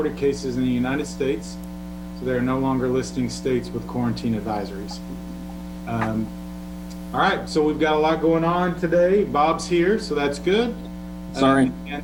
cases in the United States. So they're no longer listing states with quarantine advisories. All right, so we've got a lot going on today. Bob's here, so that's good. Sorry. And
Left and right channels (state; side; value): identical; both; correlation 1.00